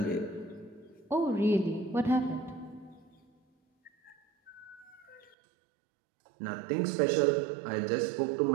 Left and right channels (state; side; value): drops out; left; at 5.4 s